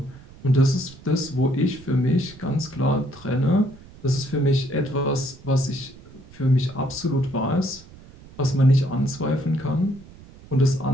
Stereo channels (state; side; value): noise; right; rumble, 21 dB below the sound